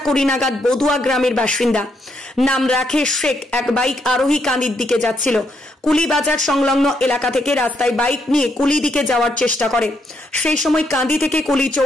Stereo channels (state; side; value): normal; both; correlation 0.76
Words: নাগাদ বদুয়া গ্রামের বাসিন্দা নাম রাকেশ শেখ এক বাইক আরোহী কান্দির দিকে যাচ্ছিল। কুলি বাজার সংলগ্ন এলাকা থেকে রাস্তায় বাইক নিয়ে কুলি দিকে যাওয়ার চেষ্টা করে। সেই সময় কান্দি থেকে কুলি